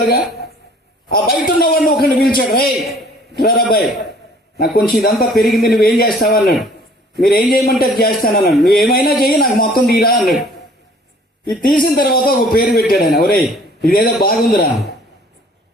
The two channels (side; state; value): both; normal; correlation 0.54